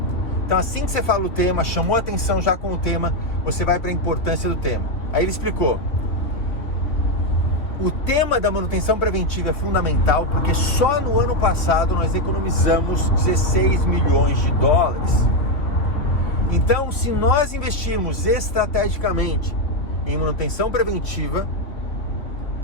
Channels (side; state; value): right; late; 3.0 ms